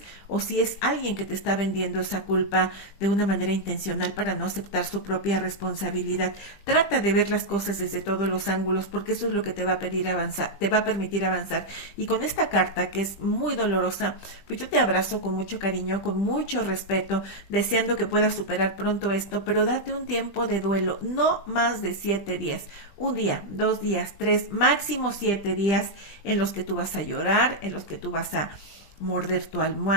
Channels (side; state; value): right; late; 20 ms